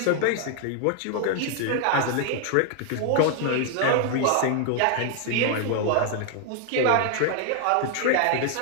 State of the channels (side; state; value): both; different; correlation 0.00